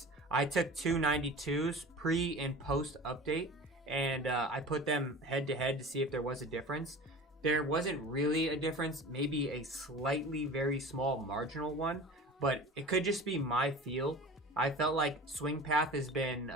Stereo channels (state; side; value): normal; both; correlation 0.37